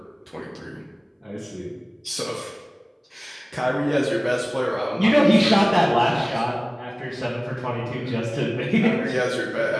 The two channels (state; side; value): identical; both; correlation 1.00